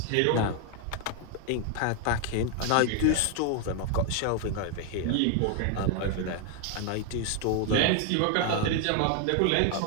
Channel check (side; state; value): both; different; correlation 0.00